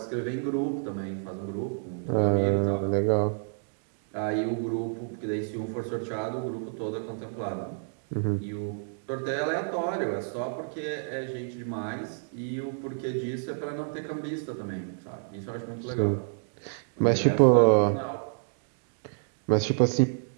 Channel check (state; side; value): silent; left; digital silence